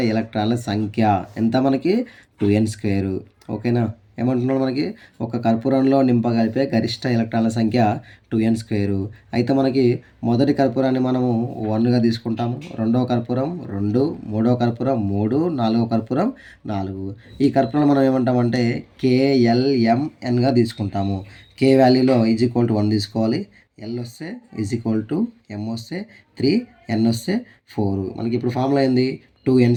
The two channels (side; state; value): both; identical; correlation 1.00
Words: ఎలక్ట్రాన్ల సంఖ్య ఎంత మనకి? 2n square. ఓకేనా? ఏమంటున్నాడు మనకి? ఒక కర్పూరంలో నింపగలిపే గరిష్ట ఎలక్ట్రాన్ల సంఖ్య 2n స్క్వేరు. అయితే మనకి మొదటి కర్పూరాన్ని మనము 1గా తీసుకుంటాము. రెండవ కర్పూరం 2, మూడవ కర్పూరం 3, నాలుగవ కర్పూరం 4. ఈ కర్పూరాన్ని మనం ఏమంటామంటే KLMNగా తీసుకుంటాము. K వాల్యూలో =1 తీసుకోవాలి. L వస్తే M వస్తే 3, N వస్తే 4. మనకి ఇప్పుడు ఫార్ములా ఏంది? 2n